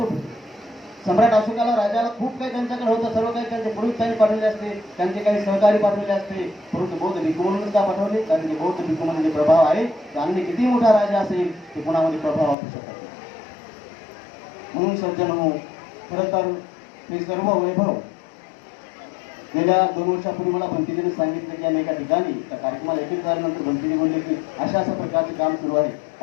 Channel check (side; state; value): right; drops out; at 12.6 s